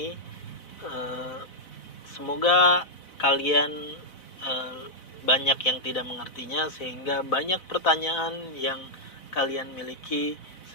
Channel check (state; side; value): late; right; 4.0 ms